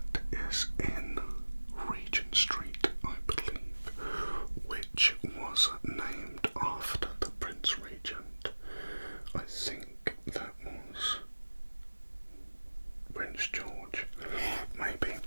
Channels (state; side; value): inverted; both; correlation -1.00